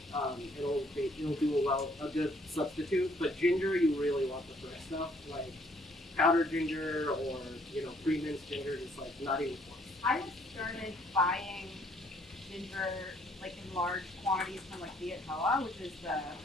It'll do a good substitute. But ginger, you really want the fresh stuff, like powdered ginger or pre-minced ginger, just not even close. I have started buying ginger in large quantities from Viet Hoa, which is the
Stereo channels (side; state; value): both; normal; correlation 0.64